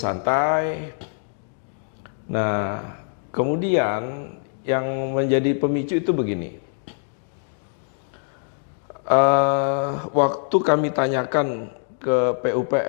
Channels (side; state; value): right; silent; digital silence